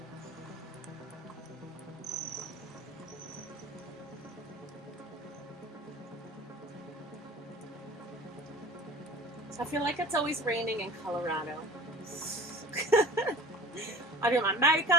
I feel like it's always raining in Colorado. I do my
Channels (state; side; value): normal; both; correlation 0.40